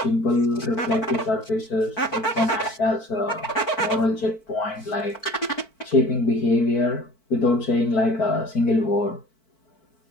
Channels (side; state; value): right; late; 4.5 ms